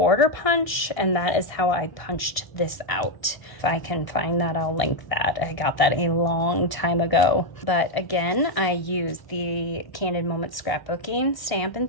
punch, and that is how I punched this out. If I can find that, I'll link that. I got that a long time ago. But again, I used the Candid Moments scrapbooking stamp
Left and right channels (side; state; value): right; late; 1.1 ms